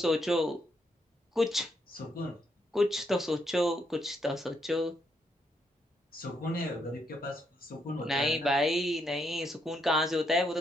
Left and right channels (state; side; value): normal; both; correlation 0.77